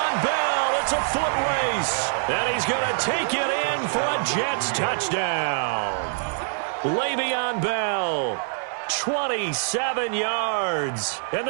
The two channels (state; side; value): silent; left; digital silence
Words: Bell, it's a foot race. And he's going to take it in for a Jets touchdown. Le'Veon Bell, 27 yards. And